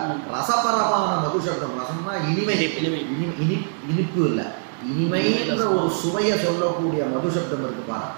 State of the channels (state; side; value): silent; left; digital silence